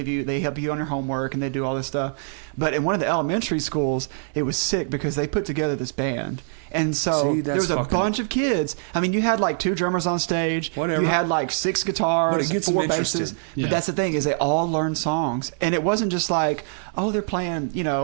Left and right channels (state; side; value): silent; left; digital silence